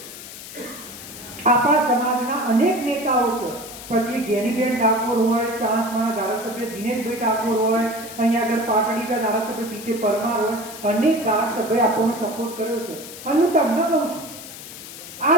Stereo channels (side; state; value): left; noise; hiss, 13 dB below the sound